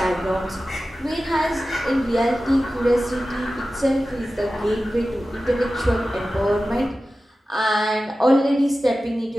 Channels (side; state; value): both; normal; correlation 0.94